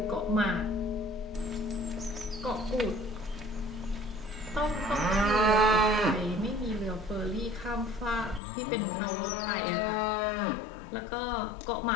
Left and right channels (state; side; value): drops out; right; at 8.4 s